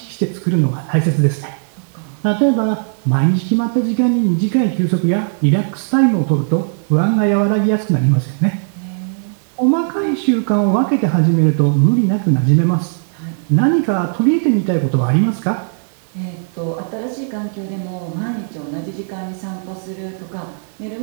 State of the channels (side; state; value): left; silent; 64 dB below the other